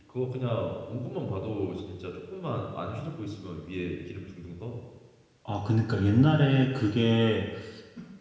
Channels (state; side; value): identical; both; correlation 1.00